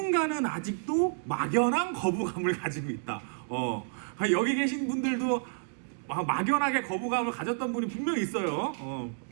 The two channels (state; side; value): silent; left; digital silence